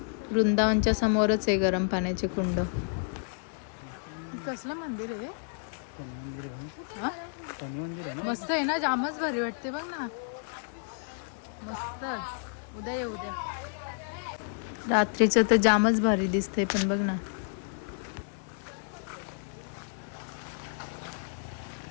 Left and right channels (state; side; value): silent; right; digital silence